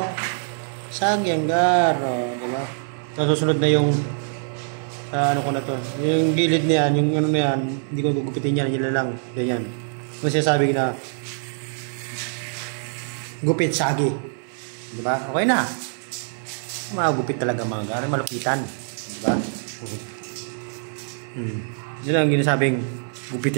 Shaggy ang gar. Diba? So, susunod na yung ano ko na to. Yung gilid niyan, yung ano na yan, hindi ko gugupitin yan, yun lang. Ganyan. Kung sinasabi na gupit shaggy. Diba? Okay na. Magupit talaga mga gar. Malupitan. Diba? Yun ang ginasabing gupit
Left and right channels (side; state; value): left; silent; digital silence